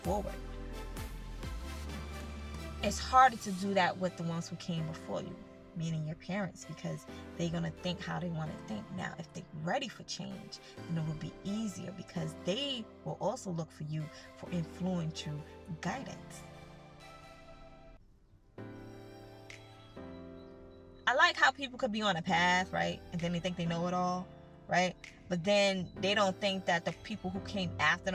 forward. It's harder to do that with the ones who came before you, meaning your parents, because they're going to think how they want to think. Now, if they're ready for change, then it will be easier, because they will also look for you for influential guidance. I like how people could be on a path, right? And then they think they know it all, right? But then they don't think that the people who came after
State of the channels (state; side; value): identical; both; correlation 1.00